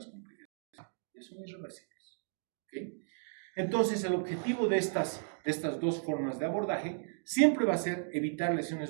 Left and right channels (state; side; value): silent; left; digital silence